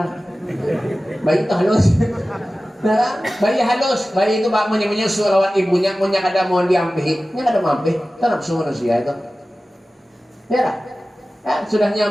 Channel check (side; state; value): both; normal; correlation 0.96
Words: Bayi itu halus. Nah, bayi halus, bayi itu bak menyusu lawan ibunya, punya kada mau diambil, nya kada mampu, itu nafsu manusia itu. Ya, sudah